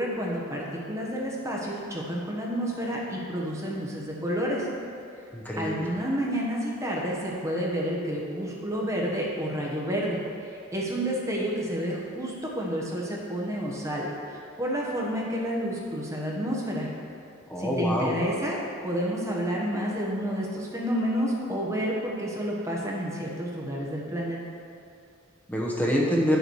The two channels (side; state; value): both; normal; correlation 0.54